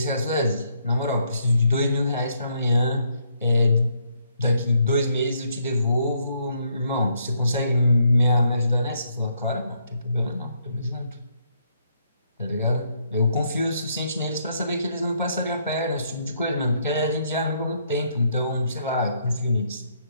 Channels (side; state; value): both; inverted; correlation -0.73